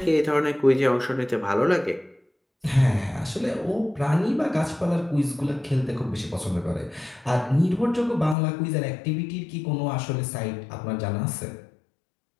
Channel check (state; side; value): drops out; right; at 8.3 s